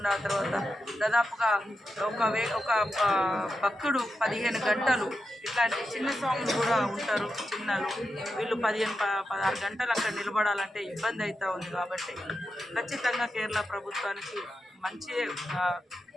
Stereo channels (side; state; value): both; normal; correlation 0.88